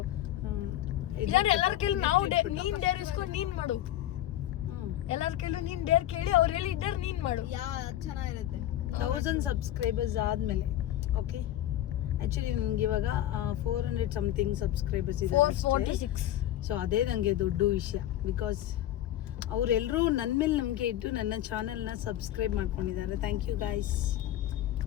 ಎಲ್ಲರ ಕೇಳಿ ನಾವು ನೀನ್ ಡೇರ್ ಇಸ್ಕೊಂಡು ನೀನ್ ಮಾಡು. ಎಲ್ಲರ ಕೇಳಿ ನೀನ್ ಡೇರ್ ಕೇಳಿ ಅವ್ರು ಹೇಳಿದ್ದಾರೆ ನೀನ್ ಮಾಡು. ಚೆನ್ನಾಗಿರುತ್ತೆ. 1000 ಸಬ್ಸ್ಕ್ರೈಬರ್ಸ್ ಆದ್ಮೇಲೆ. ಓಕೆ, ಆಕ್ಚುಲಿ ನನಗೆ ಇವಾಗ 400 ಸಮಥಿಂಗ್ ಸಬ್ಸ್ಕ್ರೈಬರ್ಸ್ ಇದ್ದಾರೆ. 446. ಸೊ ಅದೇ ನನಗೆ ದೊಡ್ಡ ವಿಷಯ. ಬಿಕಾಸ್ ಅವರೆಲ್ಲರೂ ನನ್ನ ಮೇಲೆ ನಂಬಿಕೆ ಇಟ್ಟು ನನ್ನ ಚಾನಲ್ನ ಸಬ್ಸ್ಕ್ರೈಬ್ ಮಾಡ್ಕೊಂಡಿದ್ದಾರೆ. Thank you guys.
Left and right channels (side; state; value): right; quieter; 12.8 dB